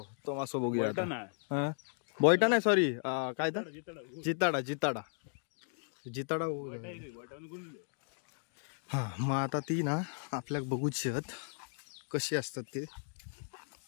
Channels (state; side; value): silent; right; 54 dB below the other